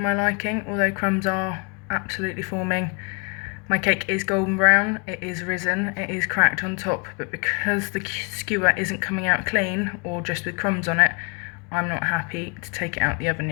liking, although crumbs are absolutely forming. My cake is golden brown, it is risen, it is cracked on top, but because the skewer isn't coming out clean or just with crumbs on it, I'm not happy to take it out the oven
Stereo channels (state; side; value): quieter; right; 34.8 dB